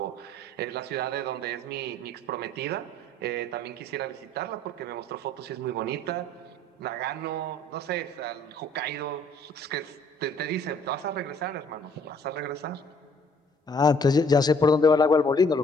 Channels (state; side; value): normal; both; correlation 0.59